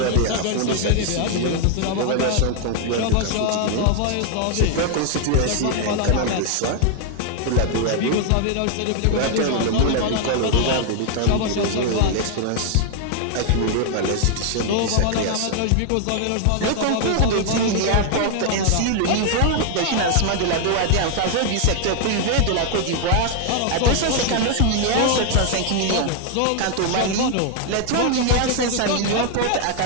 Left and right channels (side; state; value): both; different; correlation 0.00